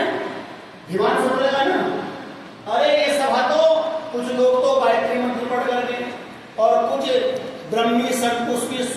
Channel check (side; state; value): both; identical; correlation 1.00